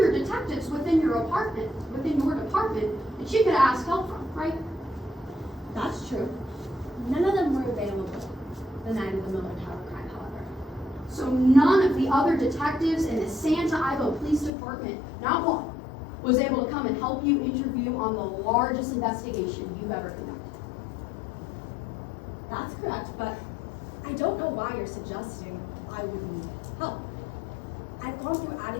detectives within your department, that you could ask help from, right? That's true. None of them were available the night of the Miller Tower crime, however. So none of the other detectives in the Santa Ivo Police Department, not one, was able to come and help you interview on the largest investigation you've ever conducted. That's correct, but I don't know why you're suggesting I would need help. I've gone through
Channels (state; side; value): drops out; right; at 14.5 s